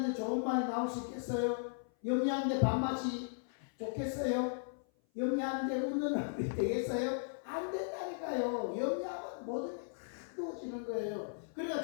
좋은 말이 나올 수 있겠어요? 염려하는데 밥맛이 좋겠어요? 염려하는데 웃는 얼굴이 되겠어요? 안 된다니까요. 염려하면 모든 게 다 누워지는 거예요. 그러니까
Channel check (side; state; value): right; silent; 53 dB below the other